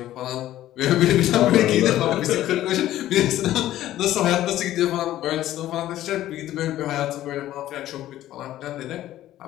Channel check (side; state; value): right; quieter; 13.7 dB